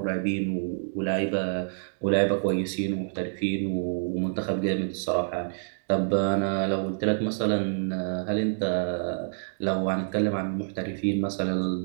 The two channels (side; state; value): left; silent; digital silence